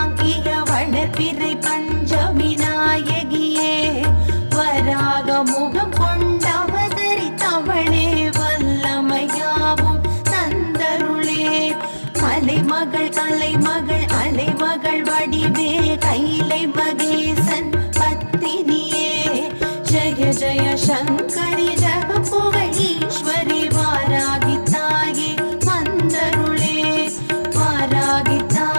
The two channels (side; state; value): both; inverted; correlation -1.00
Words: வளர்பிறை பஞ்சமி நாயகியே வராக முகம் கொண்டவதரித்தவளே வல்லமையாவும் தந்தருளே மலைமகள் கலைமகள் அலைமகள் வடிவே கைலை மகேசன் பத்தினியே ஜய ஜய சங்கரி ஜக